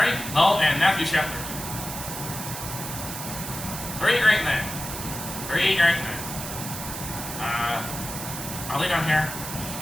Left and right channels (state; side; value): noise; right; hiss, 7 dB below the sound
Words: Lowell, and Matthew Shepard. 3 great men. I'll lay down here.